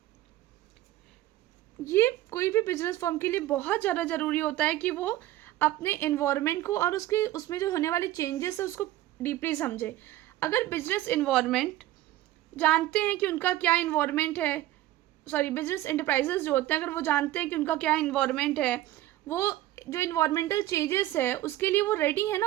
ये कोई भी बिजनेस फर्म के लिए बहुत ज़्यादा ज़रूरी होता है कि वो अपने एनवायरनमेंट को और उसके उसमें जो होने वाले चेंजेस है उसको डीपली समझे। अगर बिजनेस एनवायरनमेंट जानते हैं कि उनका क्या इन्वायरमेंट है, सॉरी बिजनेस एंटरप्राइजेस जो होते हैं, अगर वो जानते हैं कि उनका क्या इन्वायरमेंट है, वो जो इन्वायरमेंटल चेंजेस है उसके लिए वो रेडी है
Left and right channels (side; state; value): left; quieter; 15.1 dB